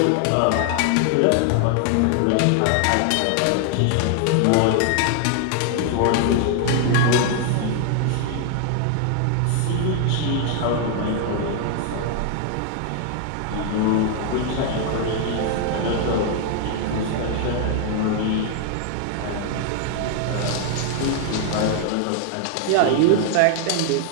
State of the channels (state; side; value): different; both; correlation 0.00